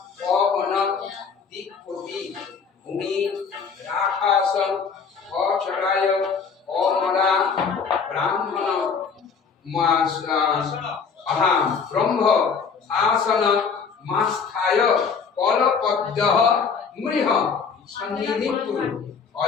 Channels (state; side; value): quieter; right; 5.8 dB